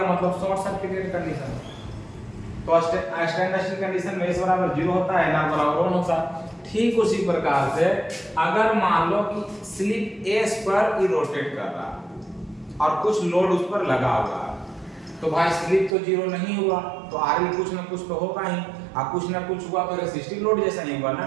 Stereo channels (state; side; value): drops out; left; at 16.0 s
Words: मतलब शॉर्ट सर्किटेड कंडीशन। तो स्टैंड स्टिल कंडीशन में S बराबर 0 होता है, NR बराबर 1 होता है। ठीक उसी प्रकार से अगर मान लो कि स्लिप S पर ही रोटेट कर रहा है और कुछ लोड उस पर लगा हुआ है, तो भाई स्लिप तो 0 नहीं हुआ, तो RL कुछ ना कुछ तो होगा ही, और कुछ ना कुछ हुआ तो रेसिस्टिव लोड जैसा नहीं हुआ ना।